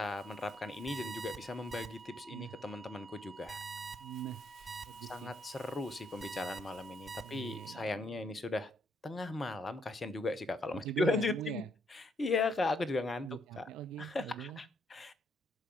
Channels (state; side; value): normal; both; correlation 0.72